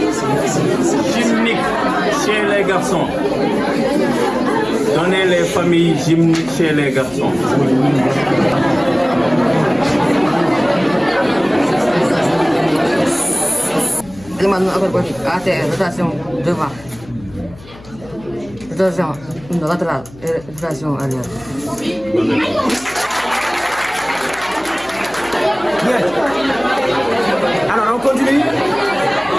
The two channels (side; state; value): left; noise; hum, 21 dB below the sound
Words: gymniques chez les garçons. Donnez les familles gymniques chez les garçons. Demande ATR, rotation devant. Rotation latéral et version arrière. Bien. Alors, on continue.